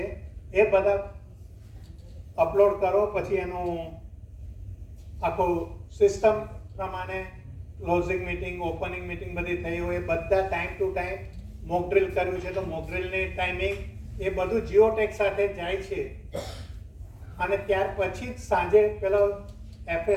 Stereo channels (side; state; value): both; identical; correlation 1.00